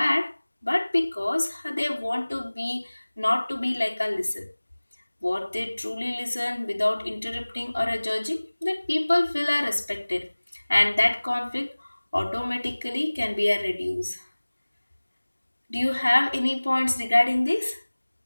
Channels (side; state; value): both; inverted; correlation -1.00